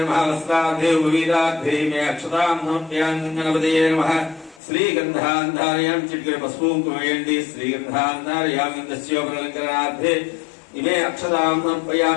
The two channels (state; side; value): drops out; right; at 4.6 s